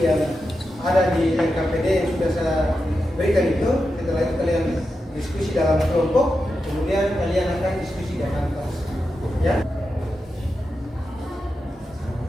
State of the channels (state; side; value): normal; both; correlation 0.89